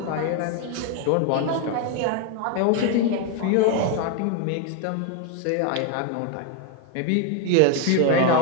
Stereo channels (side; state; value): both; different; correlation 0.01